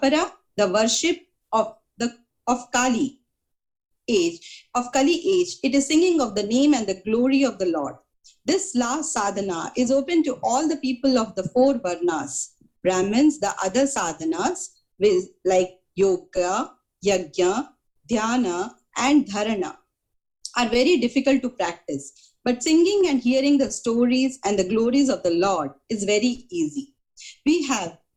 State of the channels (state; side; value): identical; both; correlation 1.00